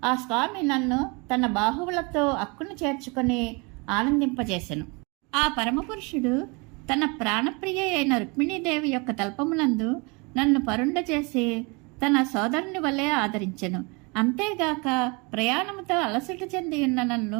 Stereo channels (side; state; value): left; quieter; 29.5 dB